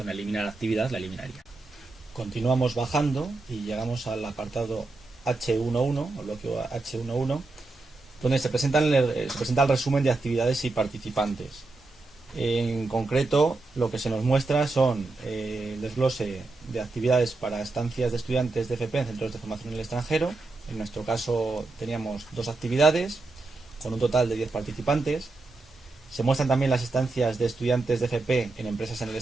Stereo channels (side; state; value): left; quieter; 3.4 dB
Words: eliminar actividad, la eliminaría. Continuamos bajando y llegamos al apartado H11, o bloque H11, donde se presenta el resumen de actividades y participantes. En concreto, lo que se nos muestra son el desglose de actividades para estancias de estudiantes de FP en centros de formación en el extranjero. En nuestro caso teníamos 2 actividades, con un total de 10 participantes. Se muestran también las estancias de estudiantes de FP en empresas en el